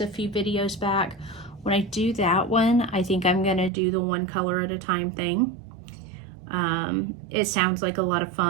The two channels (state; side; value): drops out; left; at 3.7 s